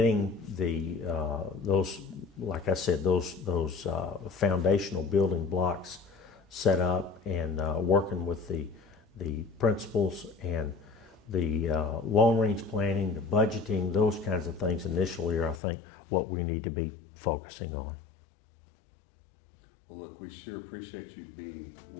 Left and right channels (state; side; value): drops out; right; at 15.6 s